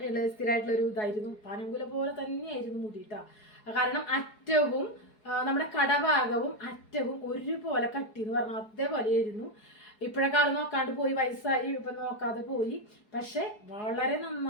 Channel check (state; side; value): late; right; 4.7 ms